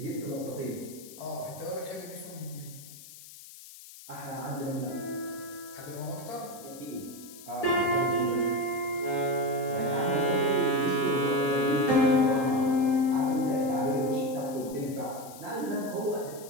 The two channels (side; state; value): left; noise; hiss, 17 dB below the sound